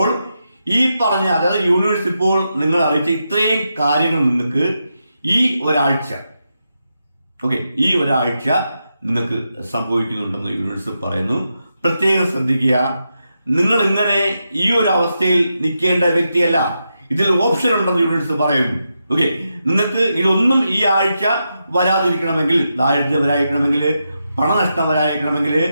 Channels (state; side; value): inverted; both; correlation -0.86